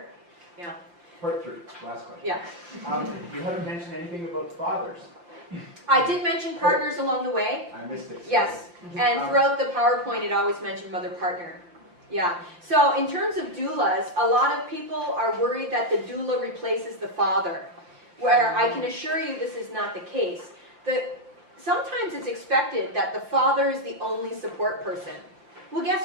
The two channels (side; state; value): left; late; 5.8 ms